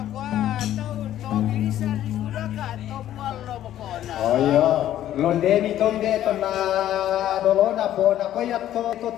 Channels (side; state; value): right; quieter; 12.2 dB